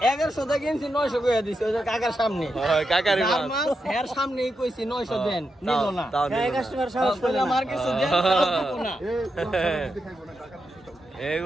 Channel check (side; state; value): both; normal; correlation 0.86